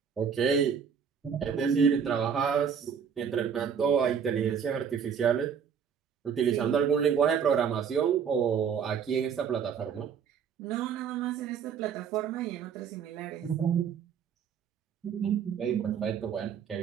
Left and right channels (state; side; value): quieter; left; 7.3 dB